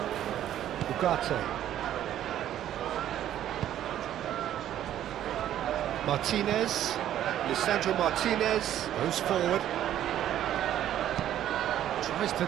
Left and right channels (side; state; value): left; quieter; 11.6 dB